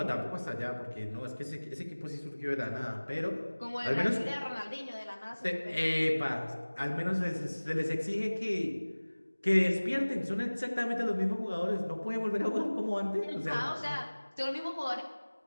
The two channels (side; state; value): both; inverted; correlation -1.00